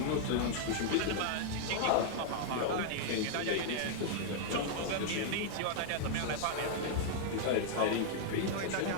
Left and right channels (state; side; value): different; both; correlation -0.01